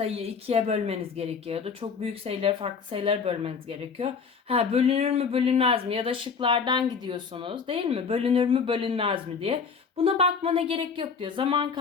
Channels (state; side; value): quieter; right; 5.8 dB